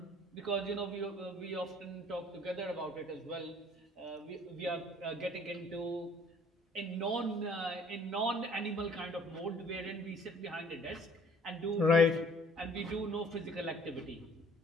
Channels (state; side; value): normal; both; correlation 0.56